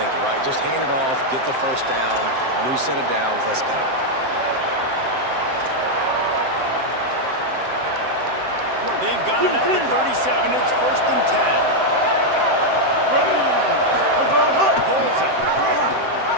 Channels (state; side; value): late; left; 7.7 ms